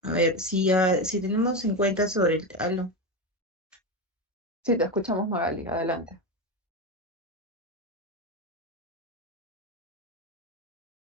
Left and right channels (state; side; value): normal; both; correlation 0.15